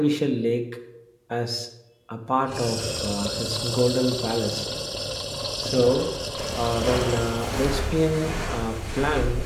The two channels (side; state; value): both; identical; correlation 1.00